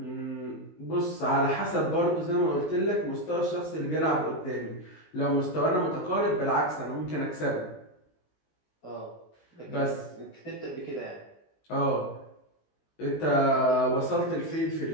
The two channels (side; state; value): right; late; 19 ms